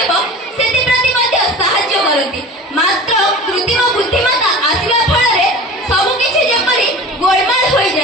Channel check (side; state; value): both; normal; correlation 0.37